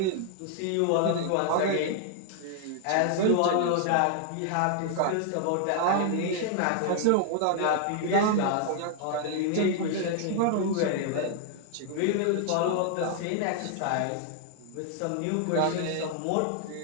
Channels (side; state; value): both; different; correlation 0.00